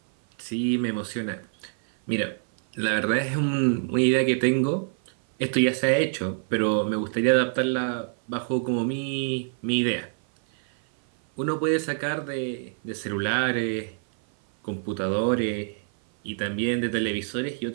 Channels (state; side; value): silent; left; 56 dB below the other